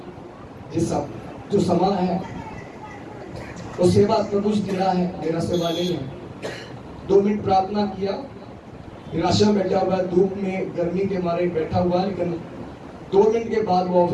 जिस जो समा है वो सेवा प्रभु जी दिया है, मेरा सेवा नहीं है। 2 मिनट प्रार्थना किया, निराशा में बैठा हुआ, धूप में गर्मी के मारे बैठा हुआ, लेकिन 2 मिनट के बाद वो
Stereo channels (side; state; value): both; identical; correlation 1.00